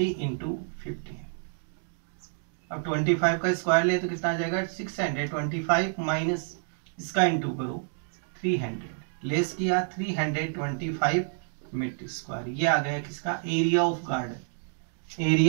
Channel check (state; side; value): silent; left; digital silence